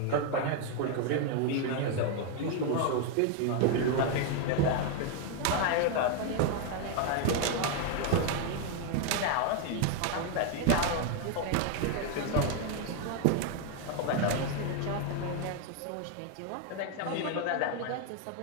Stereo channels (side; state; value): both; different; correlation 0.01